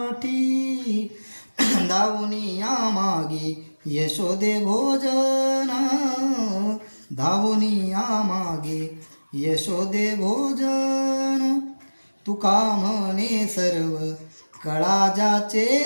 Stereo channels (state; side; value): inverted; both; correlation -1.00